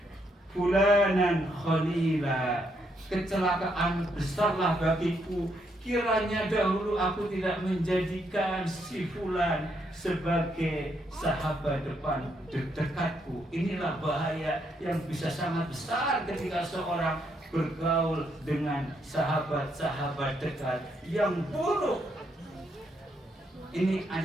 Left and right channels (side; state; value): both; normal; correlation 0.76